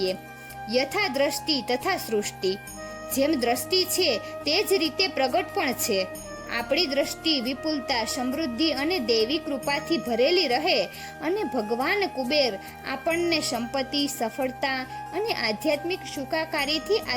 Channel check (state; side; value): identical; both; correlation 1.00